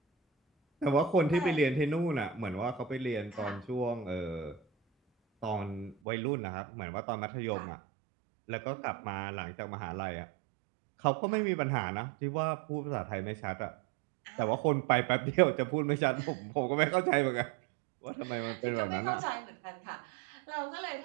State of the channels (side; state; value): left; drops out; at 6.0 s